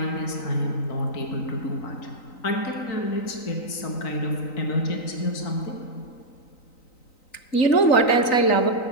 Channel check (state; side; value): late; right; 3.9 ms